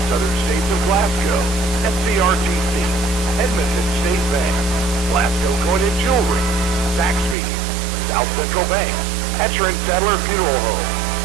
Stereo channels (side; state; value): left; drops out; at 7.4 s